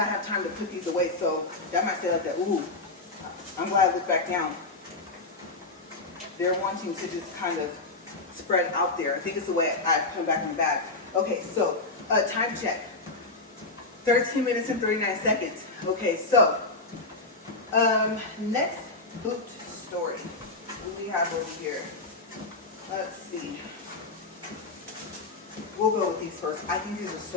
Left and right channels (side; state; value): right; quieter; 3.3 dB